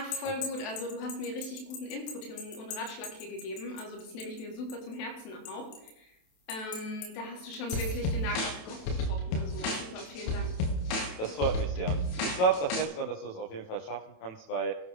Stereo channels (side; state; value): right; late; 27 ms